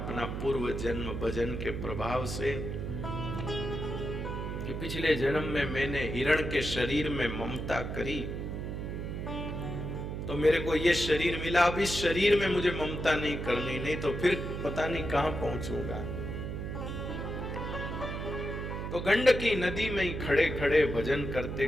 पूर्व जन्म भजन के प्रभाव से कि पिछले जन्म में मैंने हिरण के शरीर में ममता करी, तो मेरे को ये शरीर मिला। अब इस शरीर में मुझे ममता नहीं करनी, नहीं तो फिर पता नहीं कहां पहुंचूंगा। तो गंडकी नदी में ही खड़े खड़े भजन करते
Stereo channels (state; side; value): noise; right; hum, 5 dB below the sound